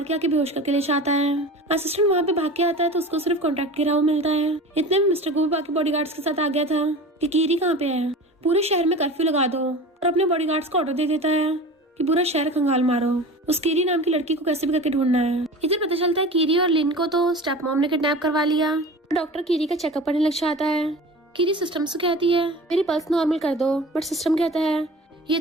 के आके बेहोश करके ले जाता है। असिस्टेंट वहाँ पे भाग के आता है तो उसको सिर्फ कॉन्ट्रैक्ट गिरा हुआ मिलता है। इतने में मिस्टर गू बाकी बॉडीगार्ड्स के साथ आ गया था कि कीरी कहाँ पे है, पूरे शहर में कर्फ्यू लगा दो। और अपने बॉडीगार्ड्स को ऑर्डर दे देता है कि पूरा शहर खंगाल मारो, उस कीरी नाम की लड़की को कैसे भी करके ढूंढना है। इधर पता चलता है कीरी और लिन को तो स्टेप मॉम ने किडनैप करवा लिया। डॉक्टर कीरी का चेकअप करने लग जाता है। कीरी सिस्टम से कहती है मेरी पल्स नॉर्मल कर दो, बट सिस्टम कहता है ये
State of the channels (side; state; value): both; normal; correlation 0.36